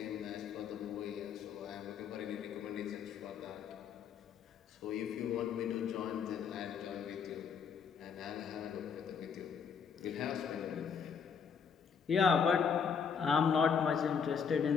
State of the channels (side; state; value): right; quieter; 6.5 dB